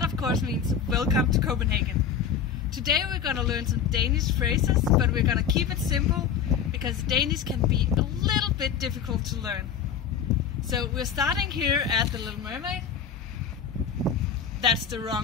of course means welcome to Copenhagen. Today we're gonna learn some Danish phrases, but we're gonna keep it simple because Danish can be a little bit difficult to learn. So we're starting here at the Little Mermaid. That's the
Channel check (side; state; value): right; quieter; 7.6 dB